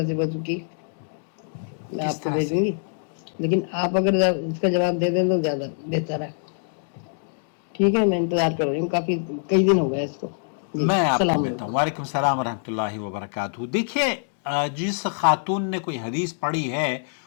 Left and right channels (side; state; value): right; silent; digital silence